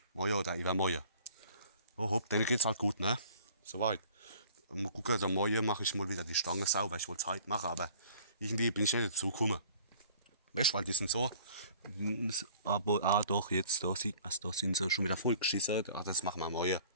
Morgen oder übermorgen. Oh hopp, dann geht's halt gut, ne? Soweit. Mal gucken, dann morgen mache ich mal wieder die Stange sauber. Ich wollte es heute machen, aber irgendwie bin ich nicht dazu gekommen. Weißt du, weil die sind so. Aber doch, jetzt, da sieht man es, da sind sie schon wieder voll geschissen. Das machen wir morgen.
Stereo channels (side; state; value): both; inverted; correlation -0.52